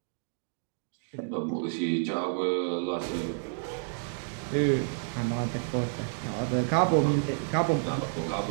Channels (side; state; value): left; silent; digital silence